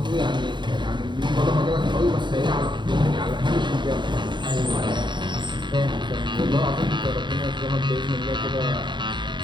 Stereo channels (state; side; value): late; left; 0.22 ms